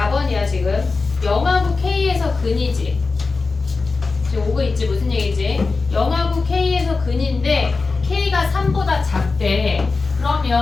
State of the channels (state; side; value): quieter; right; 4.1 dB